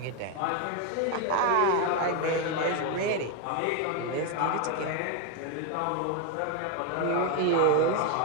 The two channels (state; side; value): different; both; correlation 0.01